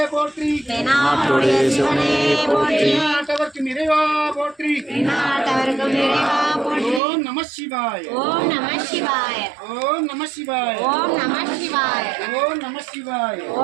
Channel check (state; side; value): drops out; left; at 7.0 s